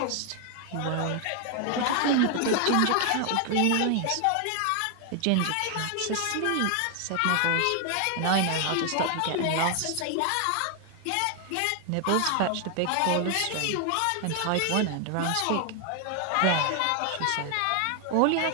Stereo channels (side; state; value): both; different; correlation 0.00